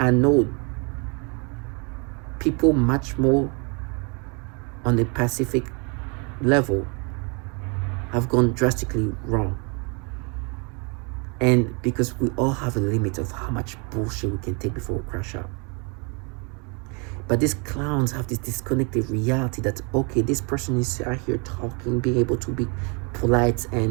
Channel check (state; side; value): quieter; left; 33.8 dB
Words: know people much more on the Pacific level have gone drastically wrong. And because we all have a limit of how much bullshit we can take before we crash out. But these clowns have this disconnected reality that, okay, this person is out here talking, being able to be polite